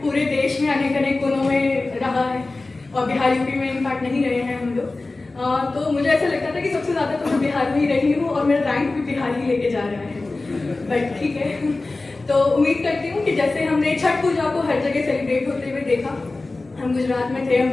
पूरे देश में अनेक अनेक कोनों में रहा है और बिहार यूपी में इनफैक्ट नहीं रहे हैं हम लोग। तो मुझे ऐसा लगता था कि सबसे ज़्यादा तो मैं बिहार में ही रही हूँ और मेरा रैंक भी बिहार ही लेके जा रहा है, बट ठीक है। तो उम्मीद करती हूँ कि जैसे हमने छठ पूजा को हर जगह सेलिब्रेट होते हुए देखा, हम गुजरात में थे, हम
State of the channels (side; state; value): right; quieter; 3.3 dB